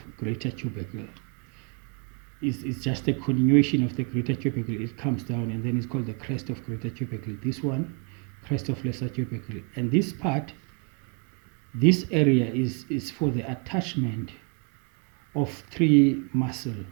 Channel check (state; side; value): quieter; left; 36.9 dB